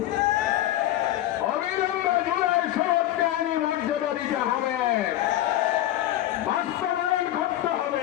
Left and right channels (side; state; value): right; quieter; 13.8 dB